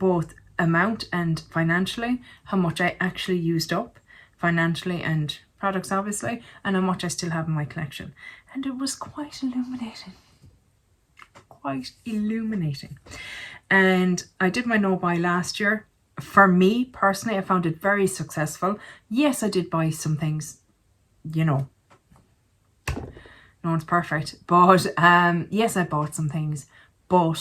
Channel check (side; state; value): both; identical; correlation 1.00